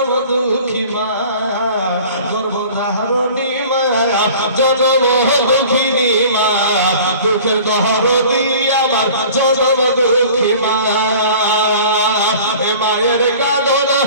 দুঃখী মা গর্ভধারণী মায়া জনম দুঃখিনী মা দুঃখের ধারণী আমার জনম দুঃখী মা এ মায়ের কাঁদন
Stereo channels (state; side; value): inverted; both; correlation -0.45